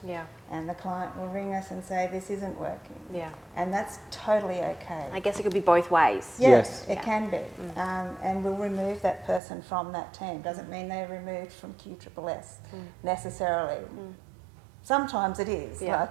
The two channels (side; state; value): left; drops out; at 9.4 s